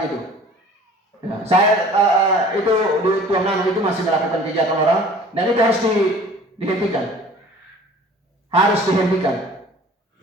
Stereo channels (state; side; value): normal; both; correlation 0.47